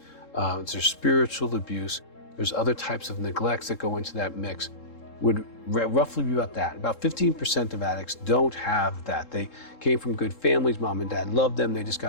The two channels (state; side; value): late; right; 3.7 ms